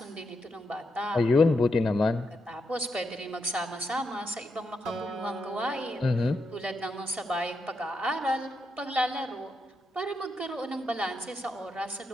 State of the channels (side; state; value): both; normal; correlation 0.83